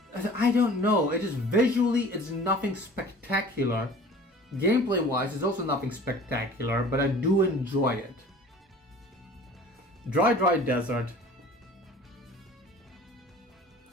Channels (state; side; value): normal; both; correlation 0.45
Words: I don't know, it just visually it's nothing spectacular. Gameplay wise it's also nothing spectacular, but I do enjoy it. Dry Desert.